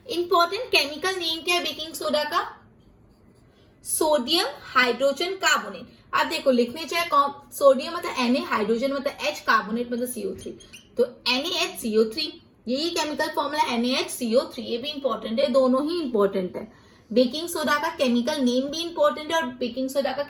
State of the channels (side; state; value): both; identical; correlation 1.00